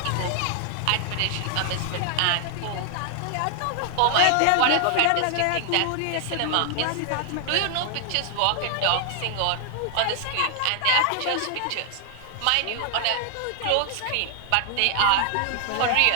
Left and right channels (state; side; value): different; both; correlation 0.00